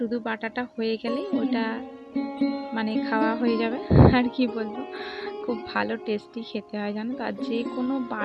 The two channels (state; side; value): identical; both; correlation 1.00